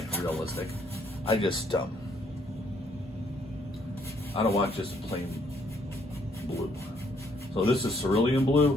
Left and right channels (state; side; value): normal; both; correlation 0.69